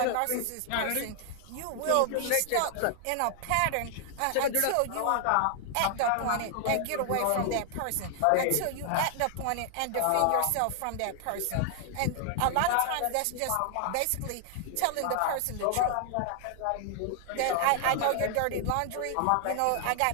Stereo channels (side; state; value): both; different; correlation 0.00